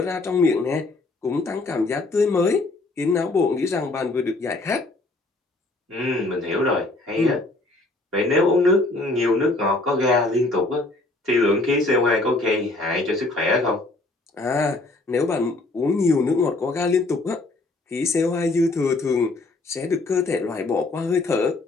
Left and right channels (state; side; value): quieter; right; 3.0 dB